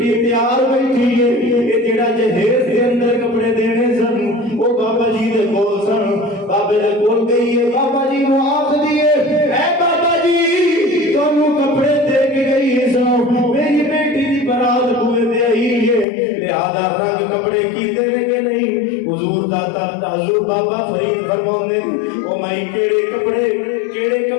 تیار بیٹھی ہے یہ جڑا جہیز دے اندر کپڑے دینے سن وہ بابا جی دے کول سن بابے دے کول گئی ہے بابا جی نو آکھ دیے اے بابا جی تانوں کپڑے دے کے گئی ہے سو میری بیٹی دی برات کو دے آئی ہے لہذا رنگ کپڑے کی دے کہ نہیں حضور داتا حضور بابا فرید فرماؤندے او مائی کیڑے کپڑے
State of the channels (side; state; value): right; drops out; at 16.1 s